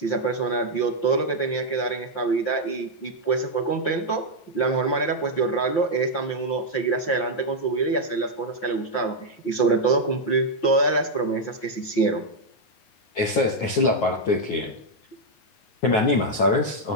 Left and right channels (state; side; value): late; right; 9.4 ms